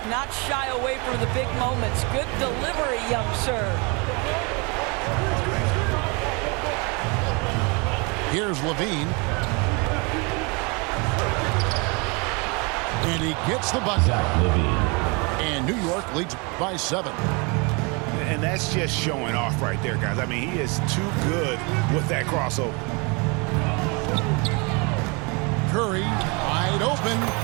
not shy away from the big moments. Good delivery, young sir. Here's Levine. And he gets the bucket. Zach Levine. And New York leads by 7. And that's just showing off right there, guys. I mean, he is too good with that crossover. Curry, wide open.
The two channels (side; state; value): left; quieter; 30.4 dB